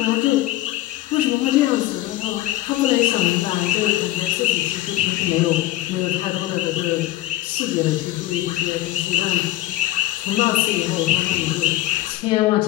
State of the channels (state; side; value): quieter; right; 15.6 dB